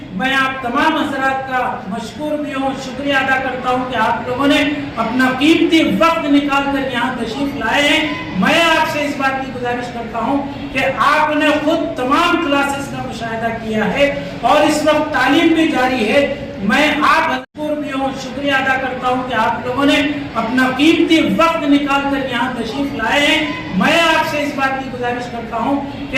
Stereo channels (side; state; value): both; identical; correlation 1.00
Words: میں آپ تمام حضرات کا مشکور بھی ہوں، شکریہ ادا کرتا ہوں کہ آپ لوگوں نے اپنا قیمتی وقت نکال کر یہاں تشریف لائے ہیں. میں آپ سے اس بات کی گزارش کرتا ہوں کہ آپ نے خود تمام کلاسز کا مشاہدہ کیا ہے اور اس وقت تعلیم بھی جاری ہے. میں آپ مشکور بھی ہوں، شکریہ ادا کرتا ہوں کہ آپ لوگوں نے اپنا قیمتی وقت نکال کر یہاں تشریف لائے ہیں. میں آپ سے اس بات کی گزارش کرتا ہوں